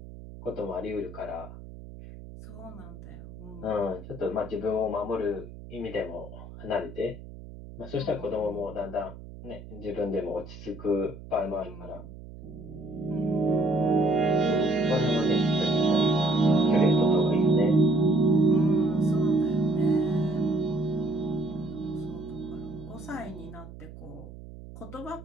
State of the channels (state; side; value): noise; right; hum, 15 dB below the sound